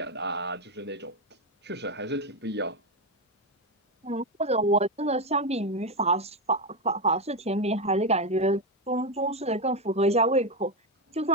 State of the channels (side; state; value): both; normal; correlation 0.09